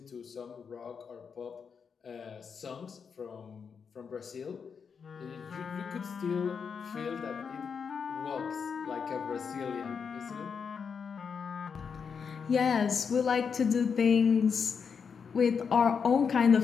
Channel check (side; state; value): right; quieter; 6.2 dB